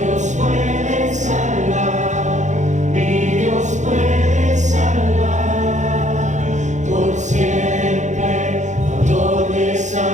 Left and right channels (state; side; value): late; left; 0.35 ms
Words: puede salvar, mi Dios puede salvar, por siempre, autor de